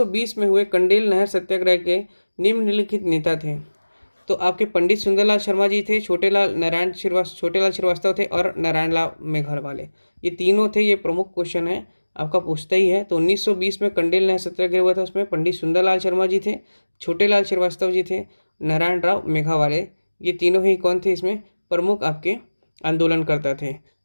में हुए कंडेल नहर सत्याग्रह के निम्नलिखित नेता थे। तो आपके पंडित सुंदरलाल शर्मा जी थे, छोटेलाल श्रीवास्तव थे और नारायण लाल मेघरवाले, ये तीनों थे। ये प्रमुख क्वेश्चन है, आपका पूछता ही है। तो 1920 में कंडेल नहर सत्याग्रह हुआ था, उसमें पंडित सुंदरलाल शर्मा जी थे, छोटेलाल श्रीवास्तव जी थे, नारायण राव मेघावाले, ये तीनों ही कौन थे? इसमें प्रमुख आपके आंदोलनकर्ता थे।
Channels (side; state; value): both; inverted; correlation -1.00